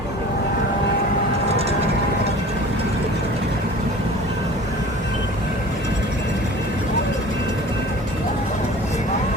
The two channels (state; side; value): normal; both; correlation 0.42